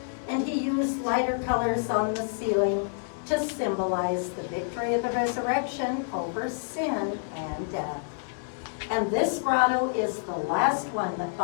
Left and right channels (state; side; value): silent; right; 59 dB below the other